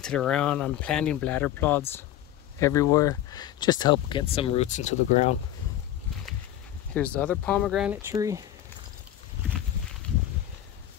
around. I'm planting bladder pods everywhere just to help get some roots into the ground. Here's the other pomegranate tree.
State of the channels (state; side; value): quieter; right; 12.5 dB